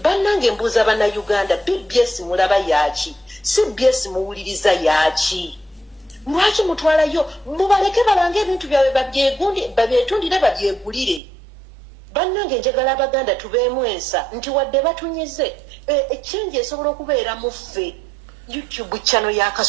bannange mbuuza bannayuganda BBS mulaba yaaki CBS muwuliriza yaaki lwaki mutwalayo mubaleke balange ebintu byabwe babyetundire babyegulire bannange njagala abaganda tubeemu ensa nti wadde batunyize ekyenje esobola okubeera mu ffe YouTube channel ya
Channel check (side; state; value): left; drops out; at 11.2 s